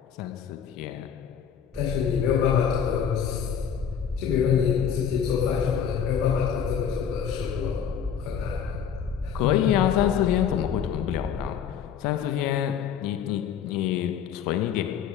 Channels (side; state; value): right; quieter; 7.9 dB